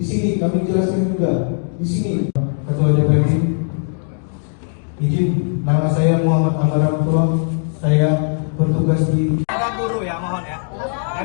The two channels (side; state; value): right; silent; digital silence